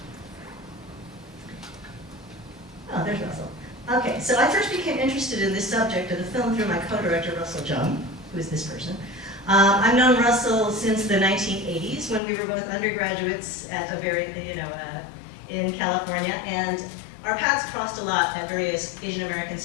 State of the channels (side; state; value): right; drops out; at 12.2 s